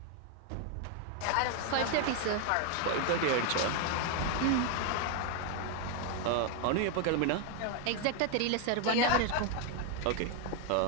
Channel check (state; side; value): different; both; correlation 0.01